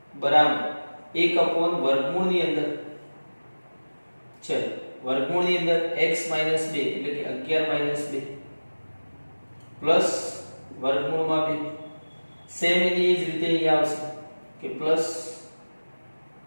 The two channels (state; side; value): inverted; both; correlation -1.00